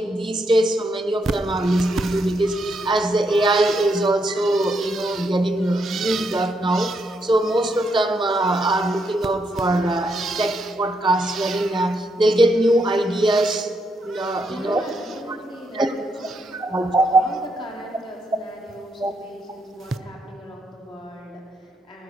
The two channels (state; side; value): normal; both; correlation 0.78